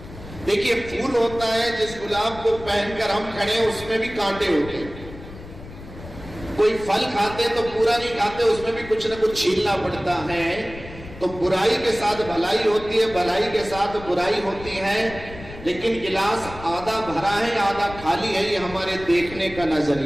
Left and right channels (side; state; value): left; noise; rumble, 15 dB below the sound